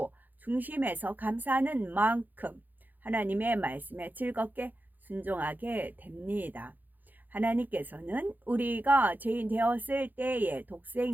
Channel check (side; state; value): left; late; 0.085 ms